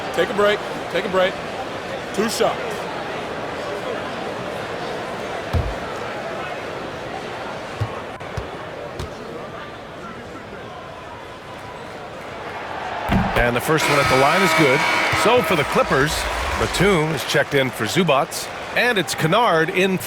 Take a break. Take a break. 2 shots. And the first one at the line is good. So for the Clippers, Batum is checked in for Zubats, and it's Kennard in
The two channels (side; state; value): both; identical; correlation 1.00